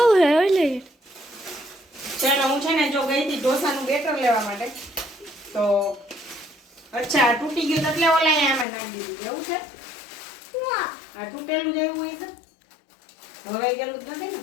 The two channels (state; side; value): drops out; right; at 8.7 s